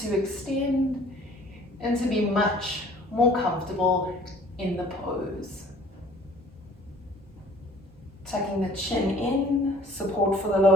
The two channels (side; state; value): both; normal; correlation 0.53